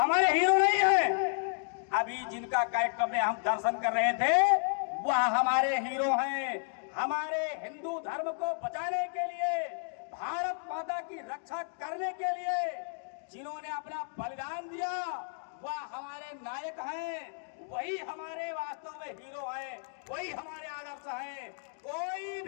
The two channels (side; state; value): right; silent; digital silence